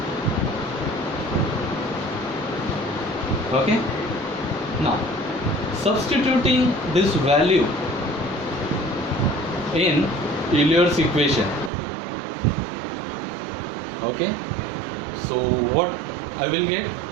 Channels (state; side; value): drops out; left; at 11.7 s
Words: Okay, now substituting this value in Euler's equation. Okay, so what I will get,